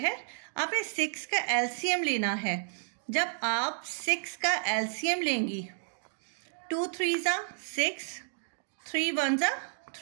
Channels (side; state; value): left; silent; digital silence